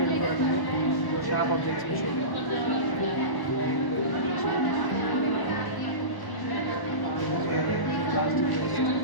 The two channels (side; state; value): right; late; 1.0 ms